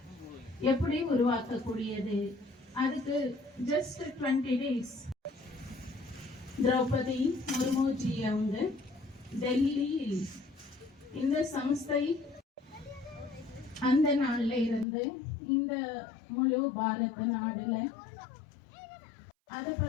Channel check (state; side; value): drops out; right; at 14.9 s